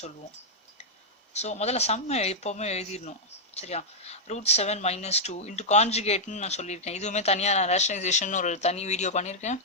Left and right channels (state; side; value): normal; both; correlation -0.04